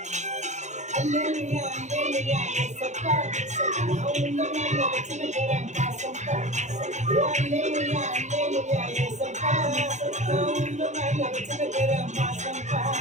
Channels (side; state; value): left; late; 0.34 ms